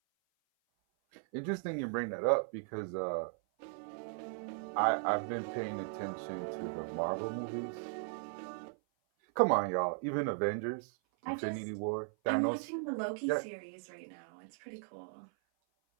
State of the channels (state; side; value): silent; left; 53 dB below the other